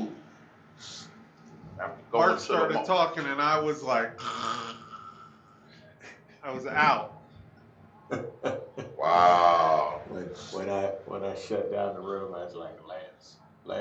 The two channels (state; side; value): identical; both; correlation 1.00